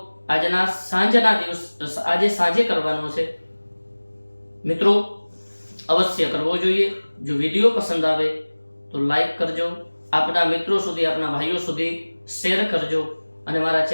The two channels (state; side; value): inverted; both; correlation -1.00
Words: આજે સાંજે કરવાનો છે મિત્રો, અવશ્ય કરવો જોઈએ। જો વિડીયો પસંદ આવે તો લાઈક કરજો, આપના મિત્રો સુધી, આપના ભાઈઓ સુધી શેર કરજો, અને મારા